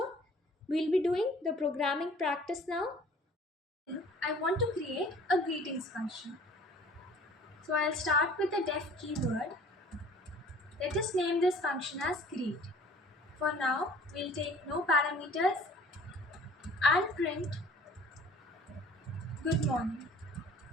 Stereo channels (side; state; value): both; normal; correlation 0.50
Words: We'll be doing the programming practice now. I want to create a greetings function. So I'll start with the def keyword. Let us name this function as greet. For now, we'll take no parameters and print good morning.